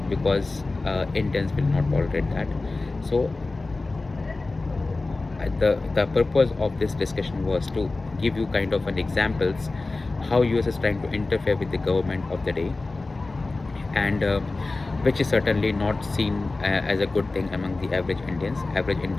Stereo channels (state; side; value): quieter; right; 3.4 dB